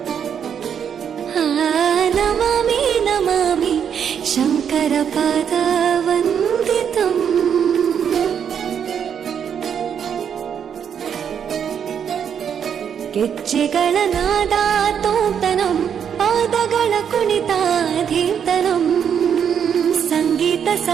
ನಮಾಮಿ ನಮಾಮಿ ಶಂಕರ ಪಾದ ವಂದಿತಂ ಗೆಜ್ಜೆಗಳ ನಾದ ತೋಂತನಂ ಪಾದಗಳ ಕುಣಿತಾಧೀತನಂ ಸಂಗೀತ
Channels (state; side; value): quieter; left; 8.0 dB